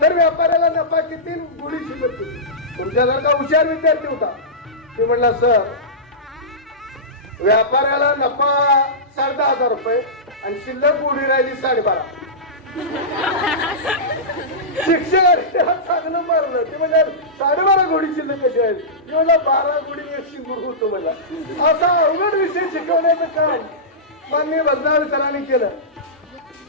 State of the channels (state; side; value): normal; both; correlation -0.16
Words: तर व्यापाऱ्याला नफा किती? घोडी शिल्लक होती. तुमच्यासारखा हुशार विद्यार्थी होता. ते म्हणला सर व्यापाऱ्याला नफा 10,500 रुपये आणि शिल्लक घोडी राहिली 12.5. शिक्षकाने चांगलं मारलं. ते म्हणजे 12.5 घोडी शिल्लक कशी आहेत? म्हणलं 12 घोडी 100 गुरु होतो मला. असा अवघड विषय शिकवण्याचं काम माननीय भजनाळ सरांनी केलं.